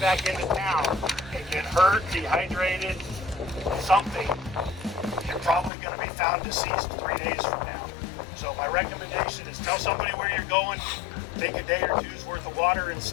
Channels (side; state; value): right; drops out; at 5.7 s